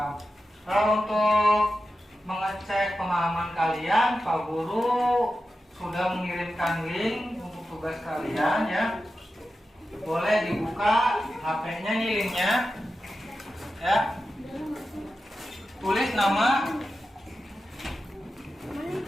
Kalau untuk mengecek pemahaman kalian, Pak Guru sudah mengirimkan link untuk tugas kalian ya. Boleh dibuka HP-nya nih linknya. Ya. Tulis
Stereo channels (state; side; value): normal; both; correlation 0.92